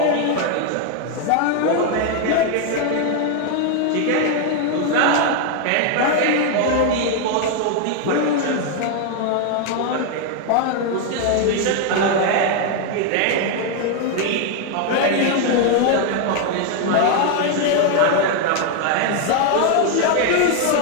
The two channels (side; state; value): both; different; correlation 0.01